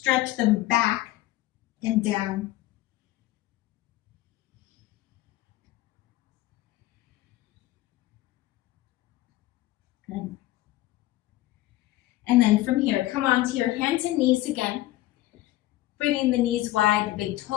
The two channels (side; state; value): right; quieter; 16.4 dB